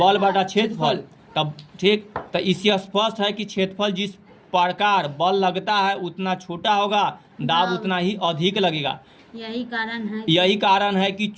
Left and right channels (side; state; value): both; identical; correlation 1.00